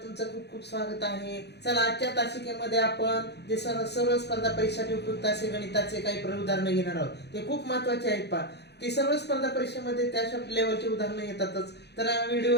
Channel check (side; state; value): right; late; 0.49 ms